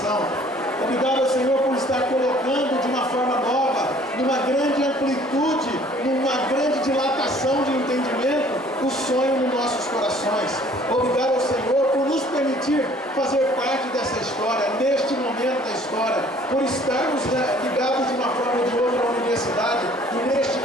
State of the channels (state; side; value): normal; both; correlation 0.55